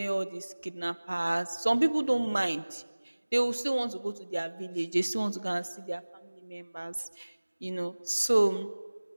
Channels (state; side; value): inverted; both; correlation -1.00